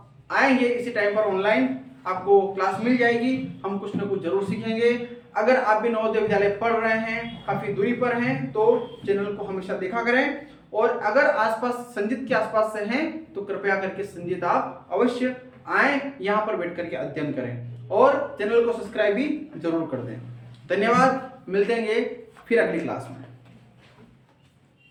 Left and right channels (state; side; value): identical; both; correlation 1.00